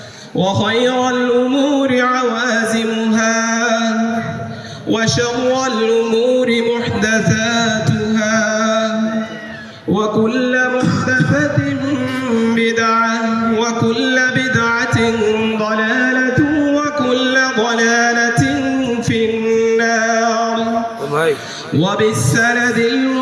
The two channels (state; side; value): identical; both; correlation 1.00